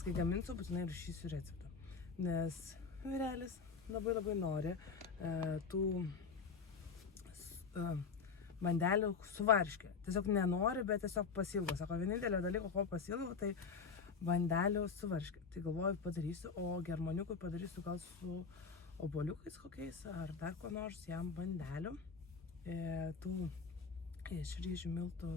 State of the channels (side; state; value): right; quieter; 5.4 dB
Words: kai gaminsiu, būtinai rašysiu receptą. Nes vyrelis labai nori tų bandelių su varške. Tiesiog nenori, bet tiesiog pasilgo. Sako, vienintelio dalyko, ko pasilgo, tai bandelių su varške. Tai galvoju, padarysiu, o germaniukui padarysiu gal su obuoliukais kokiais, ar dar ko nors jam bandelių. Tų iš ryžių miltų